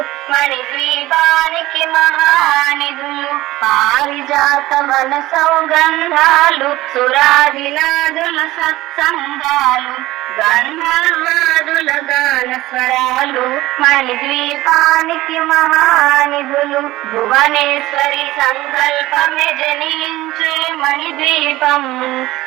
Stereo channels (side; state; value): left; quieter; 17.4 dB